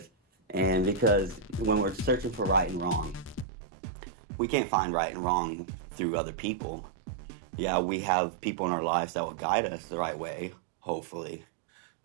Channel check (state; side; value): drops out; left; at 3.5 s